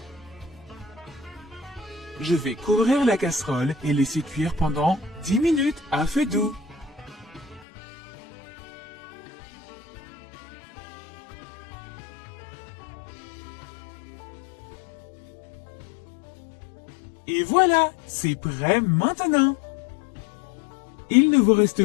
Je vais couvrir la casserole et laisser cuire pendant 10 minutes à feu doux. Et voilà, c'est prêt maintenant. Il ne vous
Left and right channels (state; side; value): drops out; right; at 7.7 s